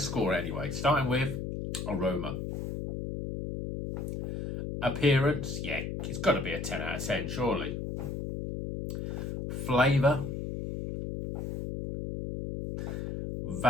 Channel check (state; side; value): noise; left; hum, 4 dB below the sound